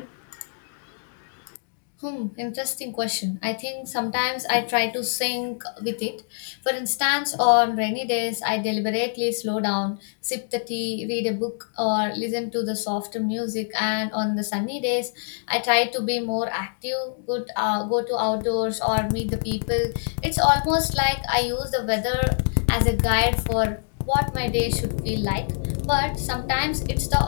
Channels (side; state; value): right; silent; digital silence